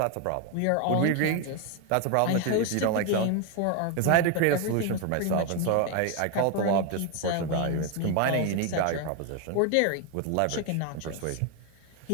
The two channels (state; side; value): different; both; correlation 0.01